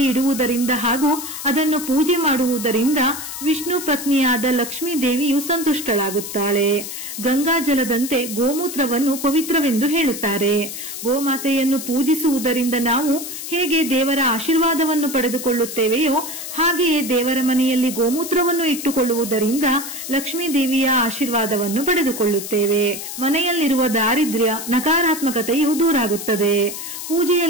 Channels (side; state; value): left; noise; hiss, 8 dB below the sound